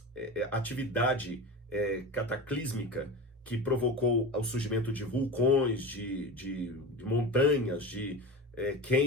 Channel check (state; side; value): normal; both; correlation 0.28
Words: atividade cataclísmica que provocou o surgimento de vulcões, de montanhas, de